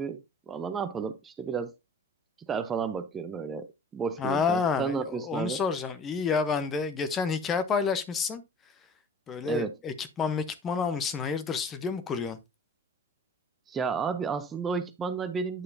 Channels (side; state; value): both; normal; correlation 0.47